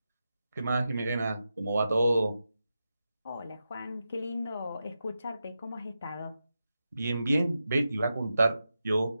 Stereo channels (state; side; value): inverted; both; correlation -0.89